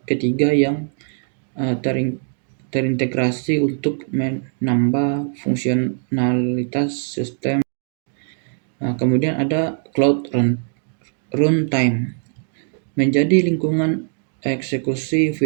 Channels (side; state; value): left; silent; 59 dB below the other